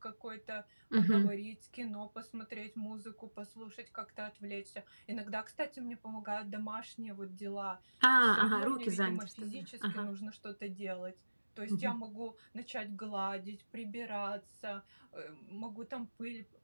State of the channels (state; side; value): inverted; both; correlation -1.00